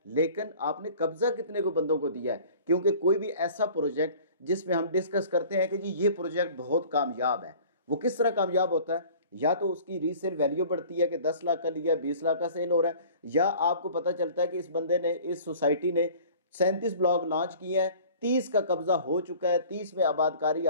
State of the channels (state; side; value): inverted; both; correlation -0.47